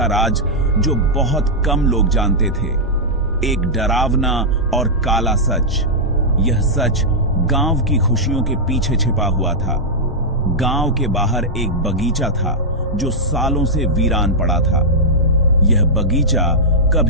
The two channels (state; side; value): normal; both; correlation -0.07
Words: राज जो बहुत कम लोग जानते थे। एक डरावना और काला सच। यह सच गांव की खुशियों के पीछे छिपा हुआ था। गांव के बाहर एक बगीचा था जो सालों से वीरान पड़ा था। यह बगीचा